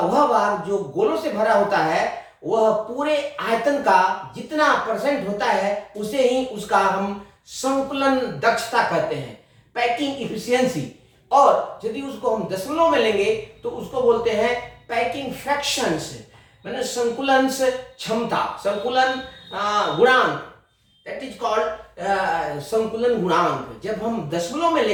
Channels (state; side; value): identical; both; correlation 1.00